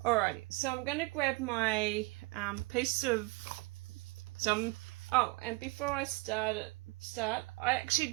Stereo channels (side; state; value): left; quieter; 25.0 dB